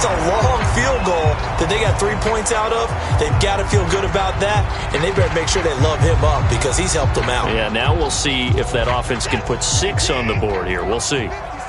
a long field goal that they got 3 points out of. They've got to feel good about that, and they better make sure they love him up because he's helped them out. Yeah, now we'll see if that offense can put 6 on the board here. We'll see.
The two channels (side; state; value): both; identical; correlation 1.00